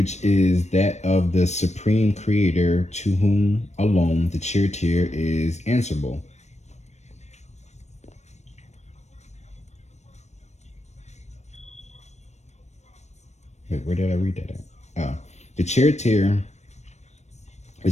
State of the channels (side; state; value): right; late; 0.33 ms